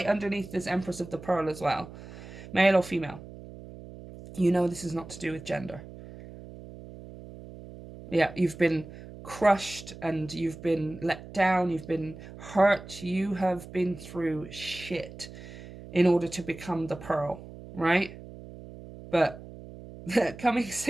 underneath this Empress of the Pearl as well, male or female. You know this is not to do with gender. Yeah, you've been crushed and you've been let down, you've been hurt, you have been through shit in order to become the pearl, right? But coming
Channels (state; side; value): noise; right; hum, 15 dB below the sound